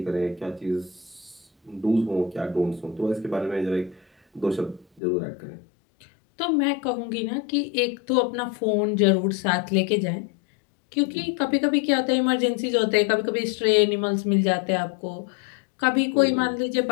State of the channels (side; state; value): right; drops out; at 5.0 s